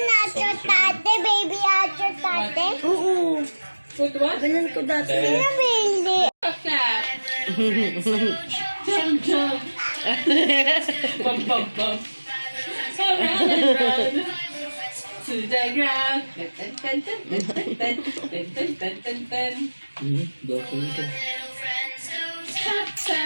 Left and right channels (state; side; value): inverted; both; correlation -1.00